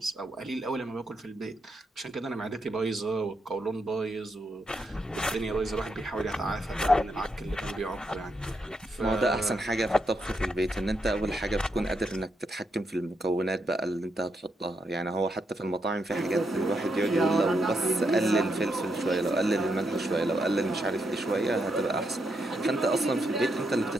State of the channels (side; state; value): both; normal; correlation 0.81